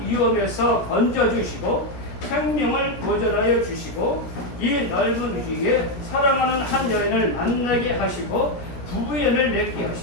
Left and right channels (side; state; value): right; late; 17 ms